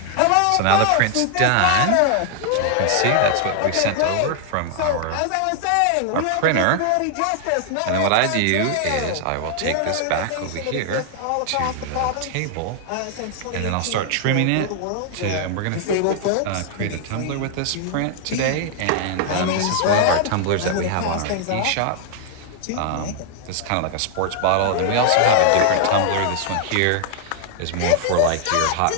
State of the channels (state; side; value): different; both; correlation 0.00